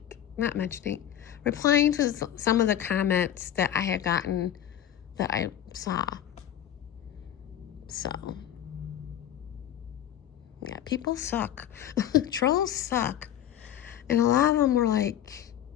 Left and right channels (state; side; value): quieter; right; 11.1 dB